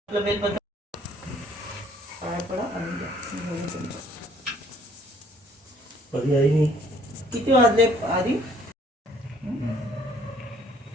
बेलपत्र पाया पडा आणि कधी आई नाही किती वाजले आधी?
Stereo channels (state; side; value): normal; both; correlation 0.60